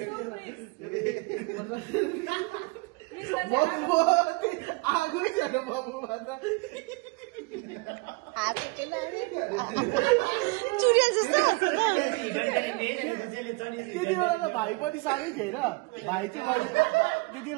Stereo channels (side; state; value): left; quieter; 25.7 dB